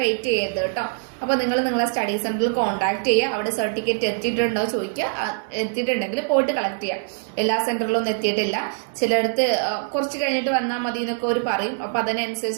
വെയിറ്റ് ചെയ്യരുത് കേട്ടോ. അപ്പോൾ നിങ്ങൾ നിങ്ങളെ സ്റ്റഡി സെൻറ്ററിൽ കോൺടാക്ട് ചെയ്യുക. അവിടെ സർട്ടിഫിക്കറ്റ് എത്തിയിട്ടുണ്ടോ ചോദിക്കുക. എത്തിയിട്ടുണ്ടെങ്കിൽ പോയിട്ട് കളക്ട് ചെയ്യാം. എല്ലാ സെൻറ്ററിലൊന്നും എത്തിയിട്ടില്ല. ചിലയിടത്ത് കുറച്ച് കഴിഞ്ഞിട്ട് വന്നാൽ മതി എന്നൊക്കെ അവർ പറയും. അപ്പോൾ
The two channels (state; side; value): silent; left; 63 dB below the other